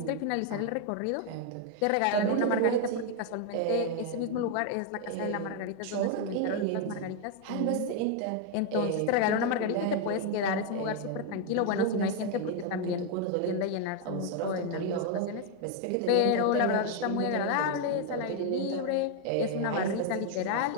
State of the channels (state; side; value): different; both; correlation 0.01